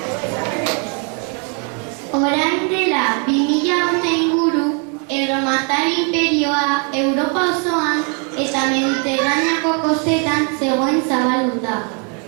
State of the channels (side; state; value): left; quieter; 38.2 dB